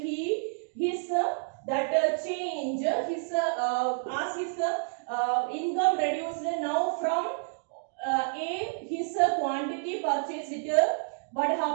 Change his as his income reduced now from A, his quantity purchased it. What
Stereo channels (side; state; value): left; silent; digital silence